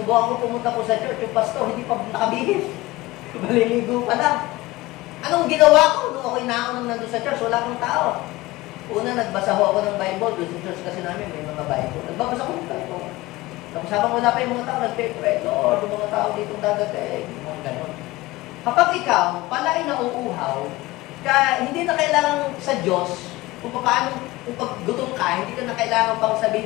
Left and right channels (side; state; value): right; quieter; 19.6 dB